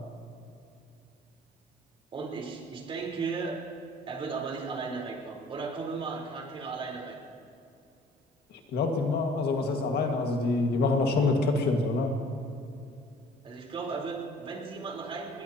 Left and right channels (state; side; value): normal; both; correlation 0.52